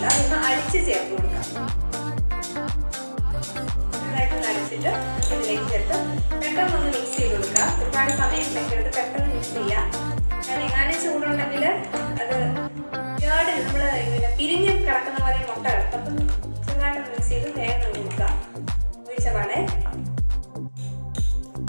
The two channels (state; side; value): inverted; both; correlation -1.00